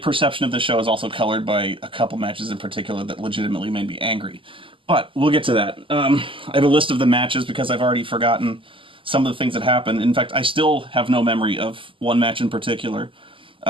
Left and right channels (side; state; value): left; late; 0.25 ms